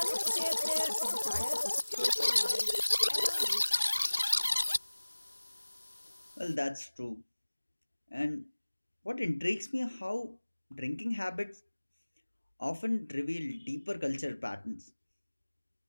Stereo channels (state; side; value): inverted; both; correlation -1.00